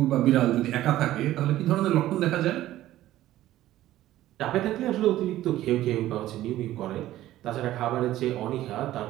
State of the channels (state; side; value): quieter; left; 14.4 dB